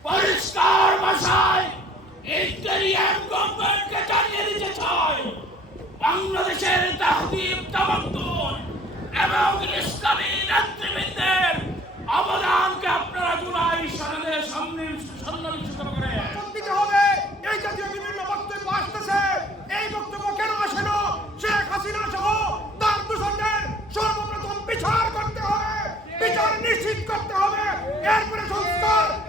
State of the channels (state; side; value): normal; both; correlation 0.54